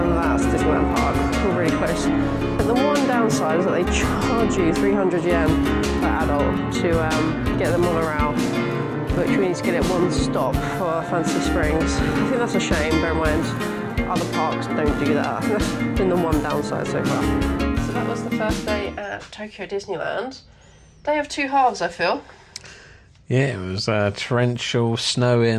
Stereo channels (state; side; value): identical; both; correlation 1.00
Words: that's Disneyland Park, all really close. But the one downside is that they charge you 300 yen per adult to get the monorail, which we need to get it one stop for Fantasy Springs. I think that's a shame, bear in mind other parks don't do that. I think that's been the one downside so far. So that was the first day at Tokyo Disneyland. Day of 2 halves, I feel. Yeah, it was torrential, snowing,